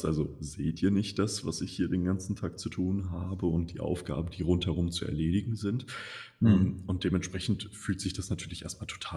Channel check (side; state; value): both; identical; correlation 1.00